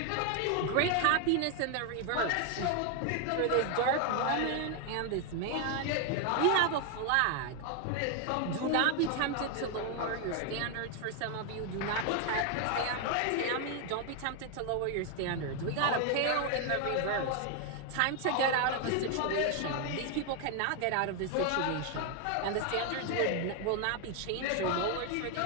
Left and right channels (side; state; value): both; different; correlation 0.01